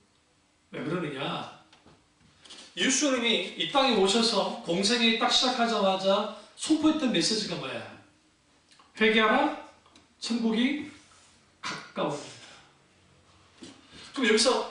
왜 그러느냐? 예수님이 이 땅에 오셔서 공생에 딱 시작하자마자 선포했던 메시지가 뭐야? 회개하라, 천국이 가까워집니다. 그럼 여기서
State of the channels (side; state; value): both; identical; correlation 1.00